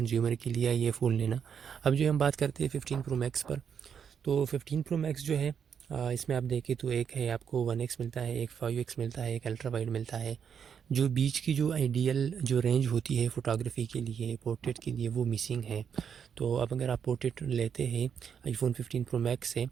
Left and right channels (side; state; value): left; quieter; 7.5 dB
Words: के लिए ये फ़ोन लेना। अब जो हम बात करते हैं 15 प्रो मैक्स पर। तो 15 प्रो मैक्स जो है इसमें आप देखें तो एक है आपको 1x मिलता है, एक 5x मिलता है, एक अल्ट्रा वाइड मिलता है। जो बीच की जो आइडियल जो रेंज होती है फ़ोटोग्राफ़ी के लिए, पोर्ट्रेट के लिए, वो मिसिंग है। तो अब अगर आप पोर्ट्रेट लेते हैं आईफ़ोन 15 प्रो मैक्स से